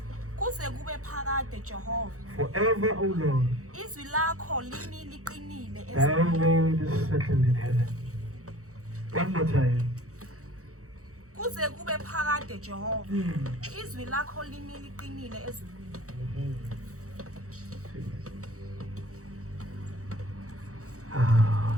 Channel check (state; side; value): late; left; 0.65 ms